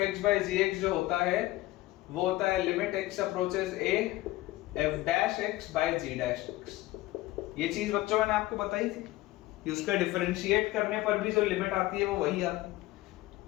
जो होता है वो होता है limit x approaches a f'(x/g')x। ये चीज बच्चों मैंने आपको बताई थी कि उसका डिफरेंशिएट करने पर भी जो लिमिट आती है वो वही आती है।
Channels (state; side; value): quieter; right; 17.8 dB